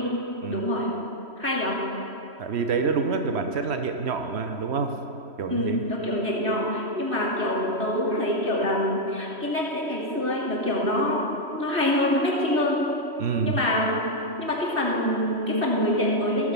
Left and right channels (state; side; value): late; left; 3.1 ms